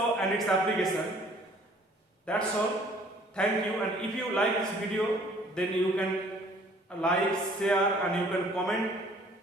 and its application. That's all. Thank you. And if you like this video, then you can like, share, and you can comment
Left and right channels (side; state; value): both; normal; correlation 0.56